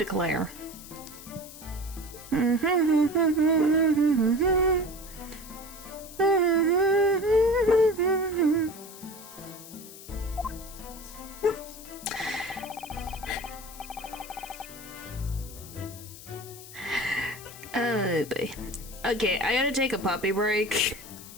Okay, I gotta take a puppy break.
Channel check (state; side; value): noise; left; hiss, 16 dB below the sound